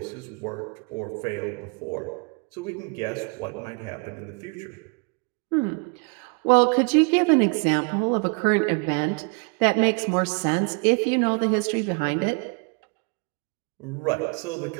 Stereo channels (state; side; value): quieter; left; 35.1 dB